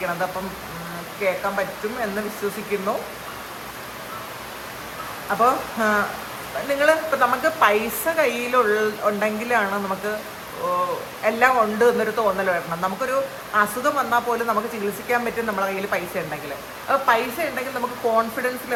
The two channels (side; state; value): both; identical; correlation 1.00